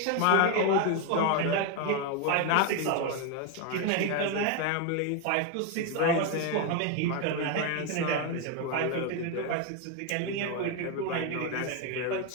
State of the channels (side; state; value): both; different; correlation 0.01